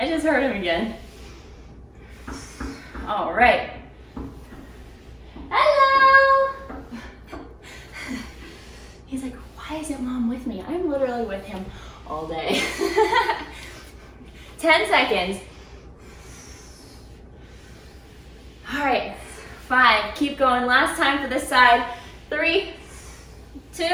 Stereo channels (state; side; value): identical; both; correlation 1.00